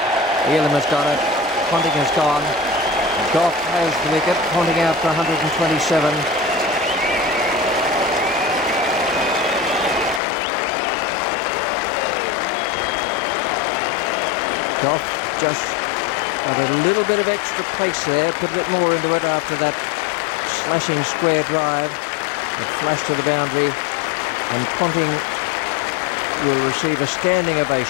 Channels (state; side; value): drops out; right; at 10.2 s